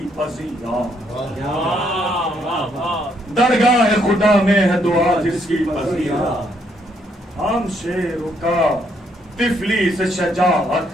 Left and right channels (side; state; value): both; normal; correlation 0.72